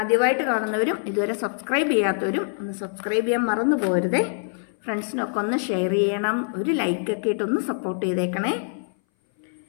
കാണുന്നവരും ഇതുവരെ സബ്സ്ക്രൈബ് ചെയ്യാത്തവരും ഒന്ന് സബ്സ്ക്രൈബ് ചെയ്യാൻ മറന്നു പോകരുതേ. ഫ്രണ്ട്സിനൊക്കെ ഒന്ന് ഷെയർ ചെയ്യണം, ഒരു ലൈക്കൊക്കെ ഇട്ടൊന്ന് സപ്പോർട്ട് ചെയ്തേക്കണേ.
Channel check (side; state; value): right; silent; 60 dB below the other